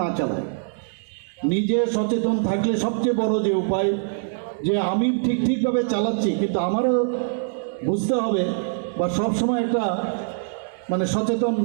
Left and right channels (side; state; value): left; silent; digital silence